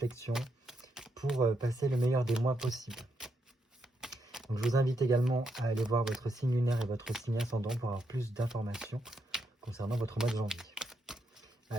pour passer le meilleur des mois possible. Donc je vous invite également à aller voir votre signe lunaire et votre signe ascendant pour avoir plus d'informations concernant votre mois de janvier.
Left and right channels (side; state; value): both; normal; correlation 0.80